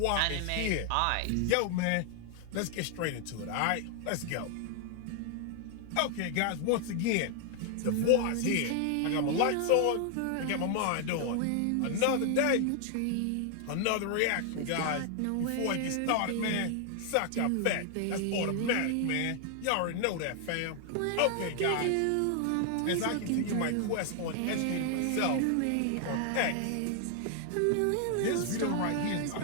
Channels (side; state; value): both; different; correlation 0.00